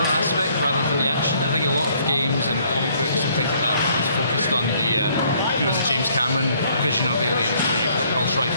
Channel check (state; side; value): inverted; both; correlation -0.64